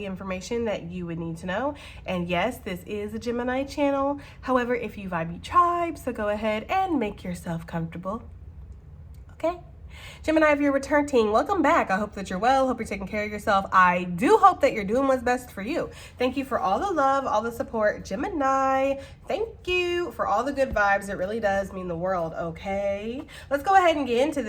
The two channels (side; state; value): both; identical; correlation 1.00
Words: information that you would need to know. And yes, this is a Gemini channel. However, if you vibe, you tribe, so go ahead and make yourself comfortable, okay? Gemini, if you're returning, welcome back. I hope that you're well. Hope you're taking care of yourself. I do hope that you're doing what's best for you. Thank you for all the love, all the support. Gemini, thank you for all the good vibes. It really does mean the world, okay? Let's go ahead and get into